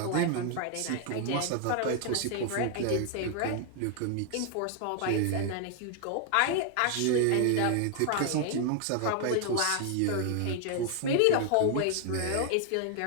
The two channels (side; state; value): both; different; correlation 0.00